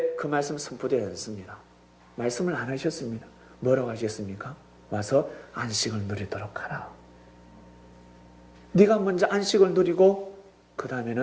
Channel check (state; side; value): identical; both; correlation 1.00